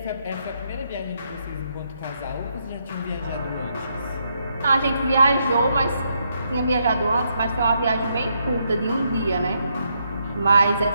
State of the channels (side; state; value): both; inverted; correlation -0.77